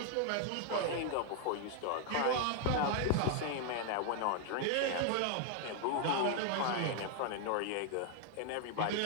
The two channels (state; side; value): different; both; correlation 0.00